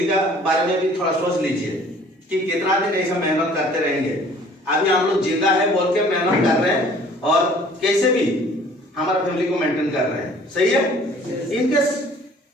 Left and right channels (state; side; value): normal; both; correlation 0.53